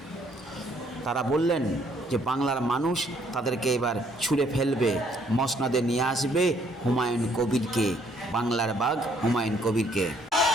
তারা বললেন যে বাংলার মানুষ তাদেরকে এবার ছুঁড়ে ফেলবে, মসনদে নিয়ে আসবে হুমায়ুন কবিরকে, বাংলার বাঘ হুমায়ুন কবিরকে।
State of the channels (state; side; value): normal; both; correlation 0.66